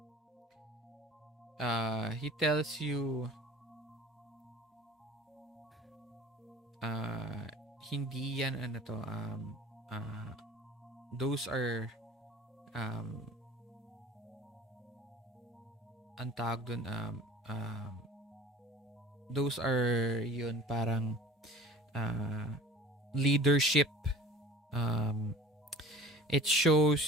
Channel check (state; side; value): normal; both; correlation 0.44